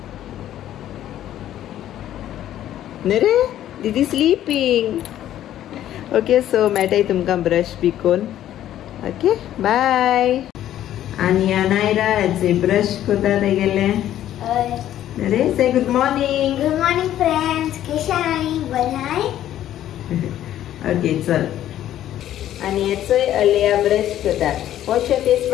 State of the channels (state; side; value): quieter; right; 12.1 dB